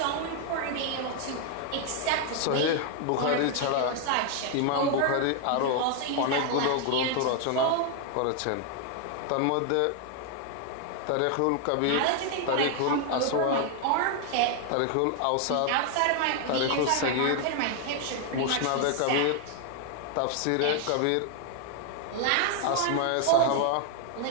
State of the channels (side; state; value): both; different; correlation 0.00